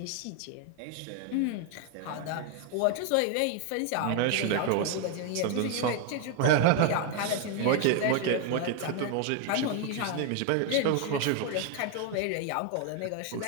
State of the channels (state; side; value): different; both; correlation 0.01